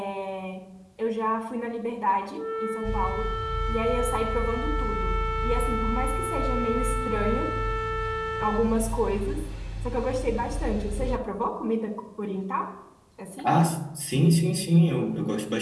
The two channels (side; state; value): both; identical; correlation 1.00